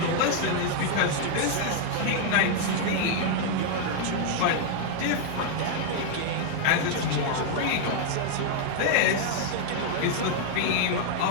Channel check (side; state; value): both; different; correlation 0.00